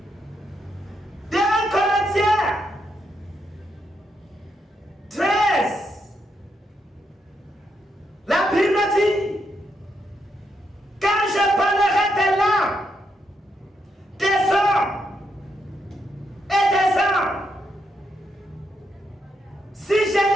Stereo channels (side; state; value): both; normal; correlation 0.80